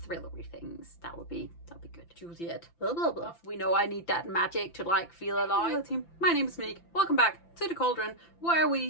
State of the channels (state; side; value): late; right; 5.9 ms